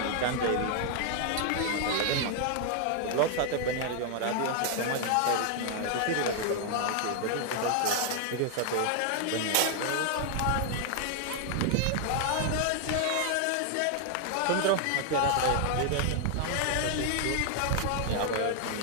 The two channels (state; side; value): different; both; correlation 0.00